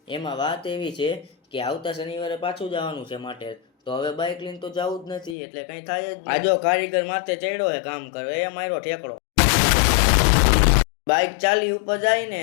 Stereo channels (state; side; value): drops out; right; at 5.4 s